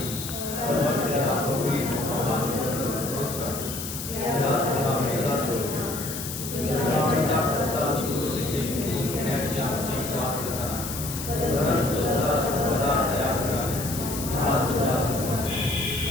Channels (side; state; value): left; noise; hiss, 7 dB below the sound